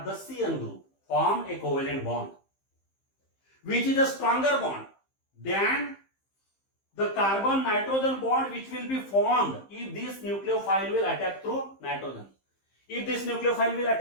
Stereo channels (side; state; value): right; late; 15 ms